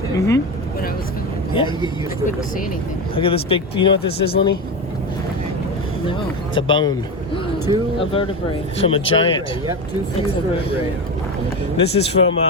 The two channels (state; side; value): normal; both; correlation 0.19